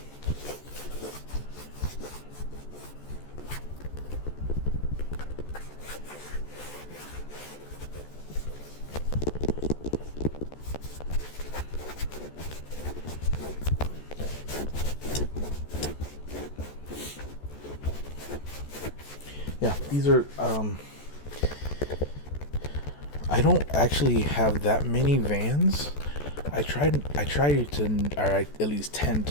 yeah, these are I don't actually have that many Vans. I try to, or I at least tend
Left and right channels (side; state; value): right; late; 14 ms